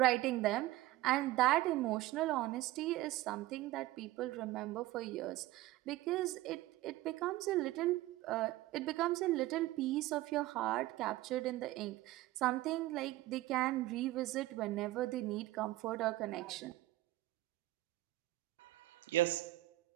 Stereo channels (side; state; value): left; quieter; 17.2 dB